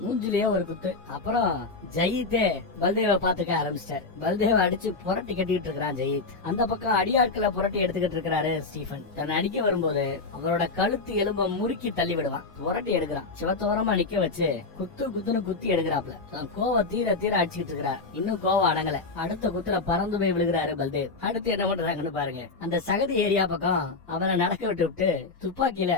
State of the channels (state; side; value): quieter; right; 3.9 dB